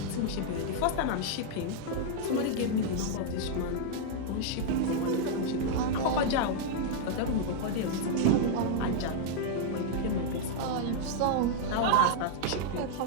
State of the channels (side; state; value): both; different; correlation -0.01